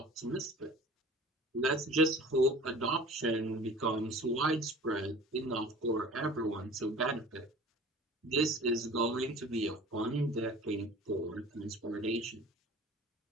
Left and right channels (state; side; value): normal; both; correlation 0.43